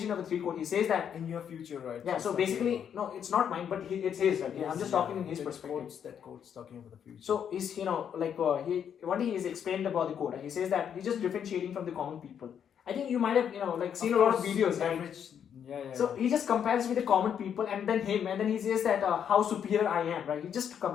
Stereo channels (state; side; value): quieter; right; 8.4 dB